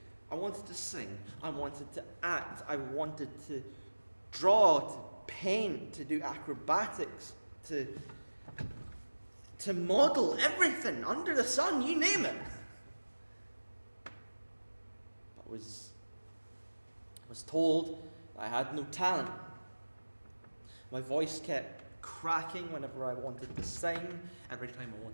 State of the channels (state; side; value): inverted; both; correlation -1.00